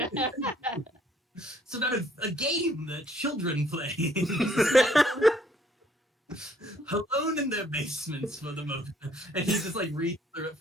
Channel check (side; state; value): both; normal; correlation 0.63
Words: a game that children play alone in their basements for the moment. And he just like reads through it